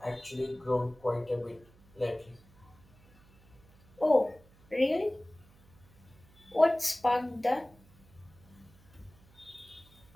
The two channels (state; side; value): noise; right; hum, 27 dB below the sound